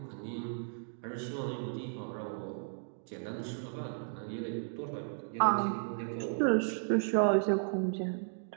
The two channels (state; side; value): silent; left; digital silence